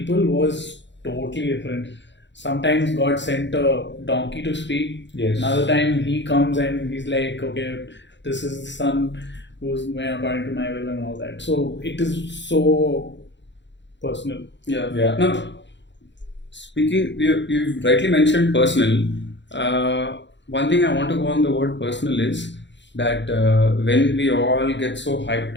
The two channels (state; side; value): late; right; 0.52 ms